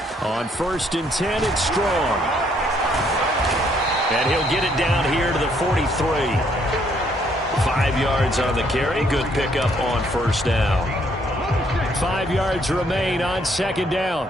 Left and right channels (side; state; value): both; normal; correlation 0.68